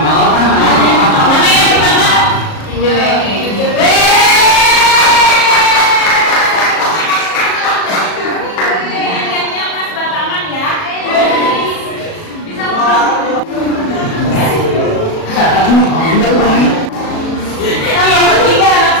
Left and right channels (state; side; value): late; right; 37 ms